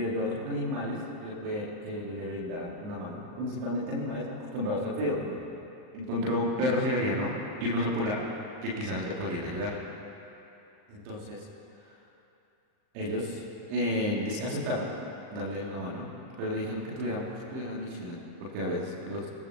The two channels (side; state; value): left; late; 38 ms